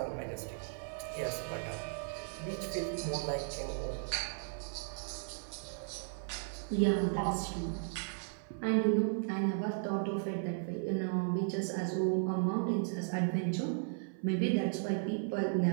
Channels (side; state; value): left; silent; 54 dB below the other